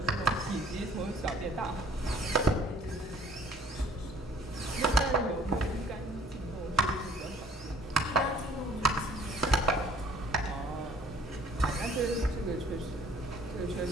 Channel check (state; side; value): normal; both; correlation 0.55